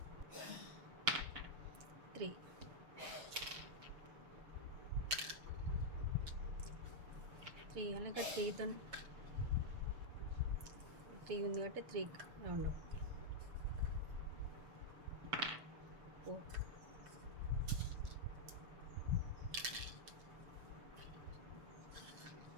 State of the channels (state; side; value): late; left; 6.7 ms